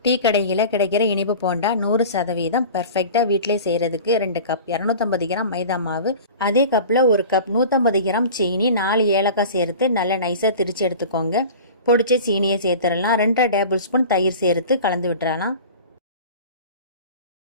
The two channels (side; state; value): both; inverted; correlation -0.38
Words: Tea கடையில் கிடைக்கிற இனிப்பு போண்டா 100% பர்ஃபெக்டாக வீட்டிலே செய்கிறதுக்கு 2 கப் 250 கிராம் மைதா மாவு, அதே கப்பில் 1 கப் 150 கிராம் சீனி, 4 ஏலக்காய் சேர்த்து நல்லா நைஸாக திரித்து எடுத்துக்கோங்க. பொடிச்ச சீனியை சேர்த்துடலாம். 2 டேபிள் ஸ்பூன் தயிர் சேர்த்து கலந்து விட்டுறலாம்.